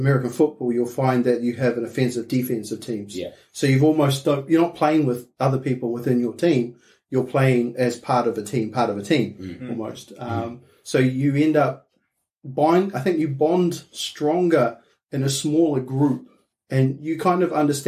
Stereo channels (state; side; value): identical; both; correlation 1.00